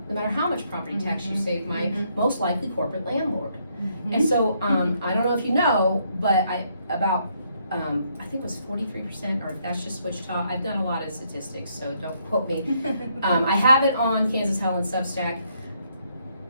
no matter how much property tax you save my most likely corporate landlord. And so I don't know if you know, but I think it was 43%, or if that's just Wichita. I've done a lot of statistics, so don't quote me. I have it on Kansas Hell and Substack.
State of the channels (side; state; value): both; inverted; correlation -0.72